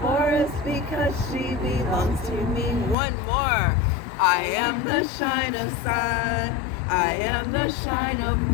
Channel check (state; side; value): drops out; right; at 3.0 s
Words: because she belongs to me. One more. I am the shine of sun. I am the shine of